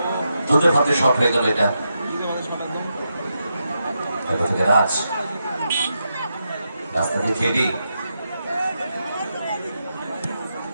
দুধে ভাতে শট হয়ে গেল এটা। রাজ রাস্তা দিয়ে খেলি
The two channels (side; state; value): both; inverted; correlation -0.85